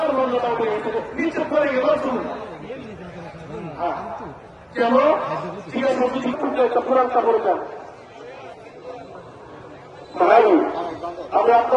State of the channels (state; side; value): identical; both; correlation 1.00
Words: মর্যাদা উঠে গেছে, নিচে পড়ে গেল শুনুন। কেন জিজ্ঞাসা করছি, একটা কোরআনটা বললাম ভাই, আমি